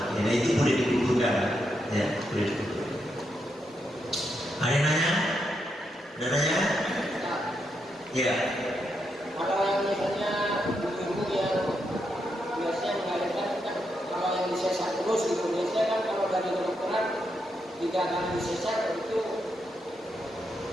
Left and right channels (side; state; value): both; normal; correlation 0.82